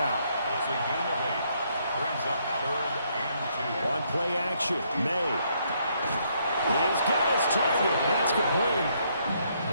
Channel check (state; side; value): inverted; both; correlation -0.72